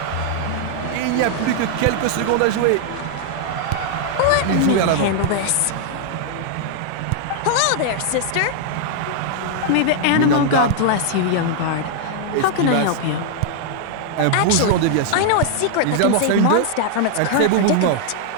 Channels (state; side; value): different; both; correlation 0.00